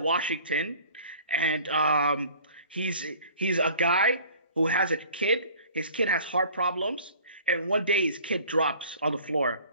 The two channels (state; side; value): inverted; both; correlation -0.49